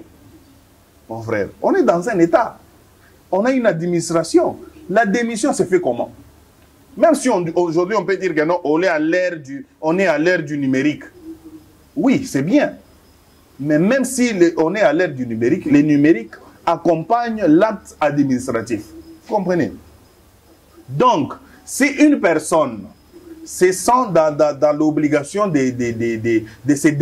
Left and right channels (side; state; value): both; identical; correlation 1.00